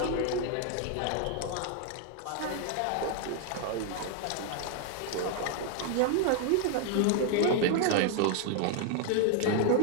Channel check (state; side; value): different; both; correlation 0.00